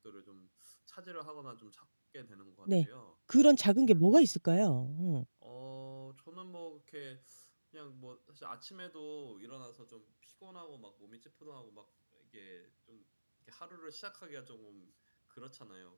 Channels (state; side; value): inverted; both; correlation -1.00